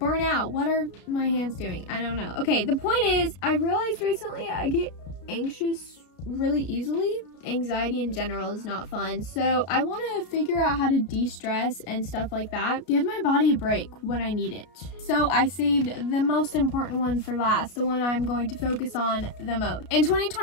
out. What are my hands doing? I don't know. Okay, the point is, I realized recently I get anxious really easily. anxiety in general is not fun. So I want to figure out how to de-stress and stuff like that. Give my body a break when I need it. So I saved the most important one for last, the one I'm going to focus on the most. In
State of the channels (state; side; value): late; right; 33 ms